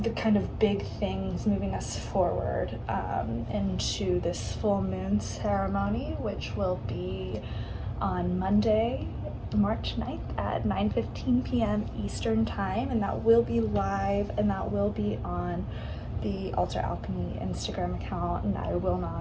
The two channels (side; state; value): both; identical; correlation 1.00